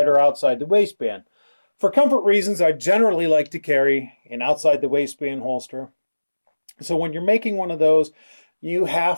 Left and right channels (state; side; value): inverted; both; correlation -1.00